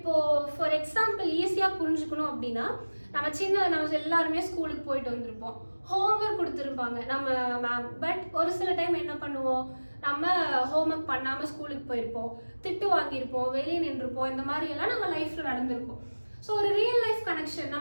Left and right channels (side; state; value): both; inverted; correlation -1.00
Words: ஃபார் எக்ஸாம்பிள் ஈஸியாக புரிஞ்சுக்கணும் அப்படின்னா, நம்ம எல்லாருமே ஸ்கூலுக்கு போயிட்டு வந்திருப்போம், ஹோம்ஒர்க் கொடுத்துருப்பாங்க நம்ம மேம். பட் ஒரு சில டைம் என்ன பண்ணுவோம், நம்ம ஹோம்ஒர்க் பண்ணாமல் ஸ்கூலுக்கு போயிருப்போம், திட்டு வாங்கியிருப்போம், வெளியே நின்றுருப்போம். இந்த மாதிரி எல்லாம் நம்ம லைஃப்பில் நடந்திருக்கும். ஸோ ஒரு ரியல் லைஃப் கனெக்ஷன்